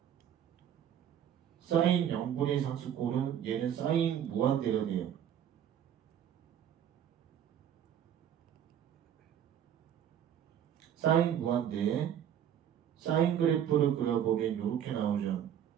사인 0분의 상수꼴은 얘는 사인 무한대가 돼요. 사인 무한대, 사인 그래프를 그려보면 이렇게 나오죠.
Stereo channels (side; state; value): left; quieter; 9.7 dB